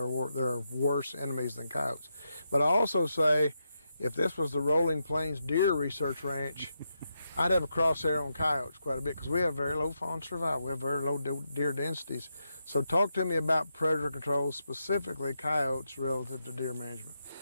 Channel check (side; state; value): both; inverted; correlation -0.84